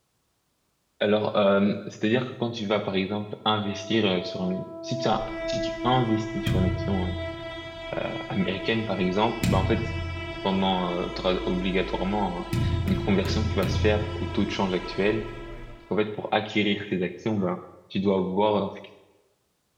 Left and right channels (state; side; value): identical; both; correlation 1.00